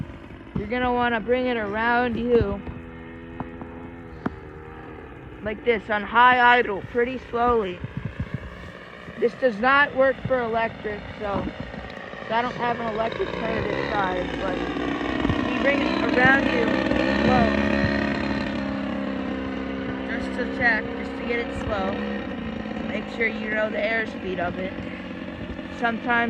you're gonna wanna bring it around you. Like this, on high idle, pretty slowly. This does not work for electric, so I don't have an electric turn this size, but you bring it around you slow, just to check, just to get it slow, to make sure you know the airspeed of it.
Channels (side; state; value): both; identical; correlation 1.00